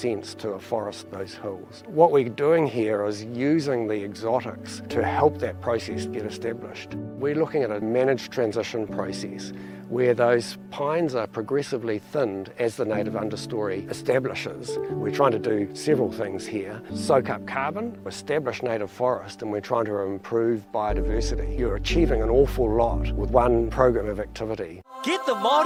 to afforest those hills. What we're doing here is using the exotics to help that process get established. We're looking at a managed transition process where those pines are progressively thinned as the native understory establishes. We're trying to do several things here. Soak up carbon, establish native forest, and we're trying to improve biodiversity. You're achieving an awful lot with one program of activity. Get the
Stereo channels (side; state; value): both; identical; correlation 1.00